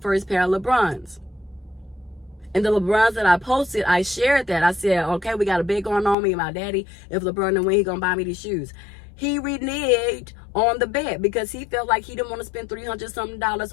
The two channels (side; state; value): right; drops out; at 6.2 s